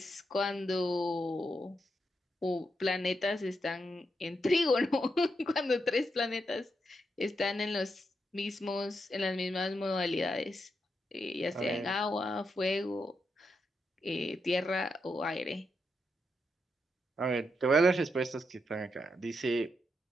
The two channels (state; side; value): normal; both; correlation 0.83